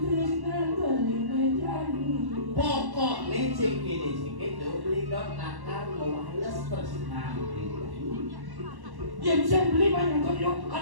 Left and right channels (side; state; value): left; late; 1.1 ms